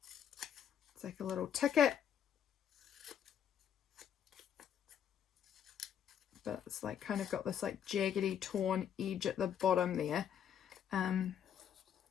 It's like a little ticket. But it's like kind of got this like jaggedy torn edge at the bottom there. I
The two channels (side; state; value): right; quieter; 9.0 dB